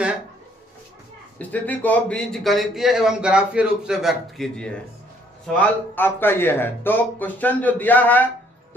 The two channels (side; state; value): both; normal; correlation 0.64